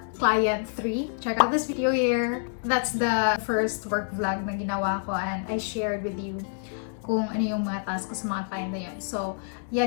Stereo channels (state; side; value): silent; right; digital silence